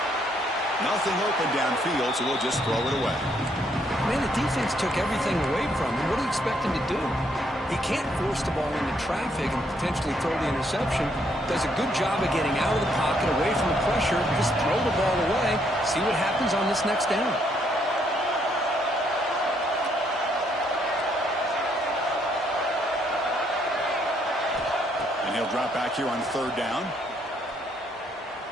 Nothing open downfield, so we'll just throw it away. Man, the defense took everything away from him. What do you expect him to do? He can't force the ball into traffic and potentially throw the interception. Does a good job of getting out of the pocket, away from the pressure, just throw the ball away, see what happens on this next down. And he'll drop back here on third down.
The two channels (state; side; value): normal; both; correlation 0.71